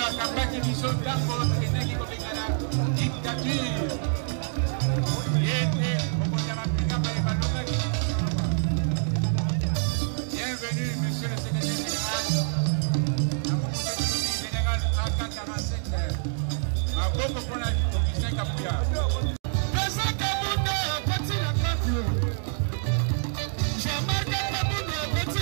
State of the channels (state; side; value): silent; left; digital silence